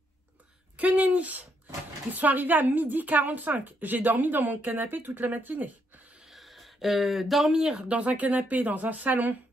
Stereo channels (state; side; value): normal; both; correlation 0.76